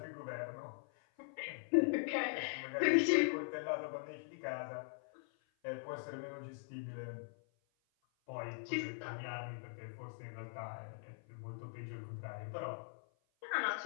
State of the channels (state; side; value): silent; right; 50 dB below the other